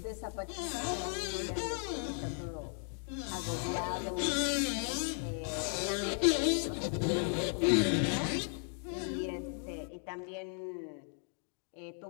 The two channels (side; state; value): right; silent; 54 dB below the other